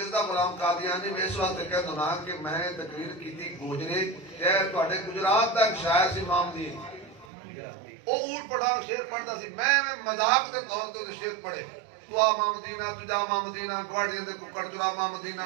غلام قادیانی میں اس واسطے کہہ دوں کہ میں تقریر کیتی گوجرے شہر تواڈے گجرات دا ایک شاعر سی امام دی او اونٹ پڑھا شعر پڑھدا سی میں مذاق دے طور تے شعر پڑھے تو ماں مدینہ تجا ماں مدینہ گواڑیاں دے ککڑ چرا ماں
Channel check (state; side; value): drops out; left; at 7.2 s